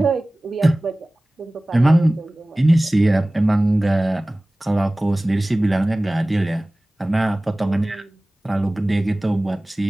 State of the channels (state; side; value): normal; both; correlation 0.98